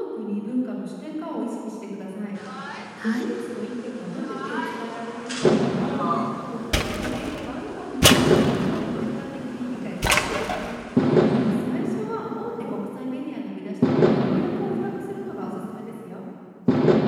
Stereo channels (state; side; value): identical; both; correlation 1.00